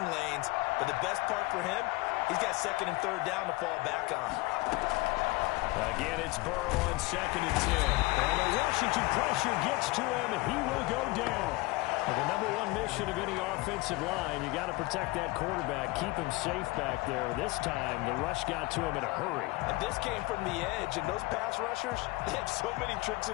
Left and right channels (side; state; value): right; quieter; 22.4 dB